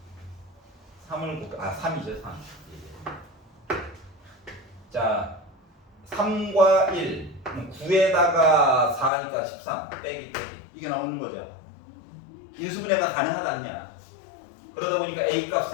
3을 3이죠 3. 자 3과 1 9에다가 4니까 13 빼기 이게 나오는 거죠. 인수분해가 가능하다느냐. 그러다 보니까 A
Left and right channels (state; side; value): drops out; right; at 9.1 s